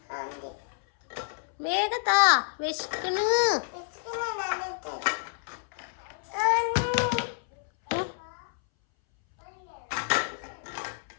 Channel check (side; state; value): right; silent; 59 dB below the other